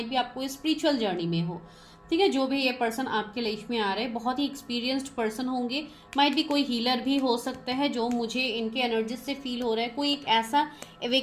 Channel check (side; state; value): both; identical; correlation 1.00